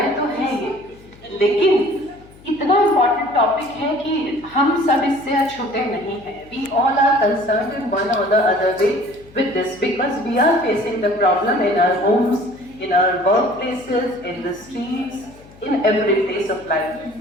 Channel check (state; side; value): noise; left; hum, 24 dB below the sound